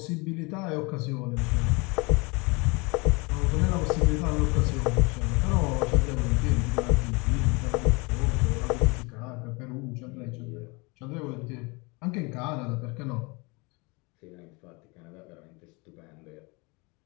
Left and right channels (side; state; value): right; quieter; 27.9 dB